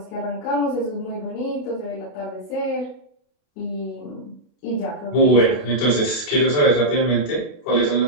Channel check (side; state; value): right; late; 32 ms